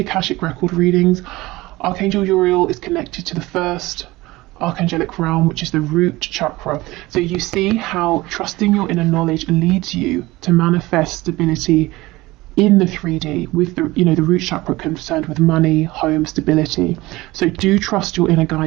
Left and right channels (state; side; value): quieter; left; 19.8 dB